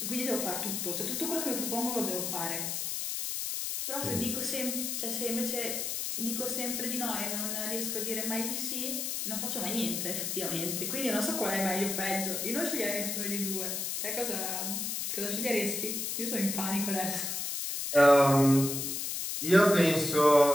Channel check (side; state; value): left; noise; hiss, 2 dB below the sound